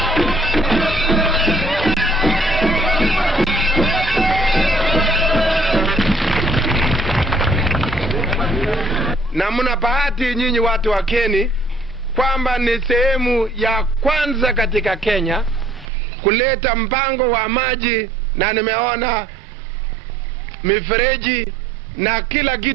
Na mna bahati nyinyi watu wa Keni kwamba ni sehemu ya kwanza katika Kenya kuleta mpango wa maji, na nimeona mifereji na kila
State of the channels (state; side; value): drops out; left; at 15.9 s